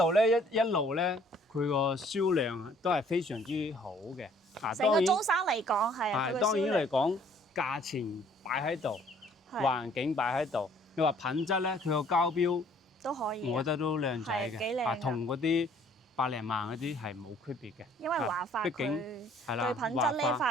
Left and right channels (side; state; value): both; normal; correlation 0.59